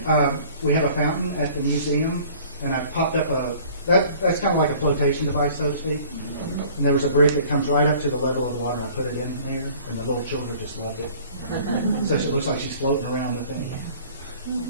We have a fountain at the museum, and I popped up that's kind of like a flotation device, so to speak. And there was a brick that comes right up to the level of the water, and I put it in there, and the little children just loved it. So it looks like she's floating around the thing.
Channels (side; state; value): both; inverted; correlation -0.50